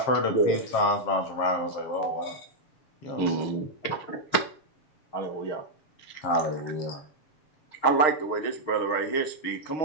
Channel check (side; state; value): right; late; 6.5 ms